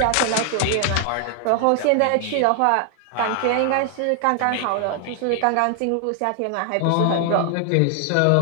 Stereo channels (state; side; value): different; both; correlation 0.00